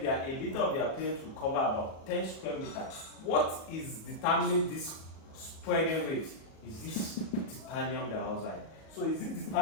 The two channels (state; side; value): late; right; 37 ms